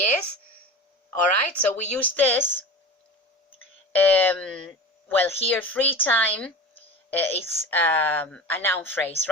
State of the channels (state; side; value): normal; both; correlation 0.32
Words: All right, so we use this. Well, here free time is a noun phrase,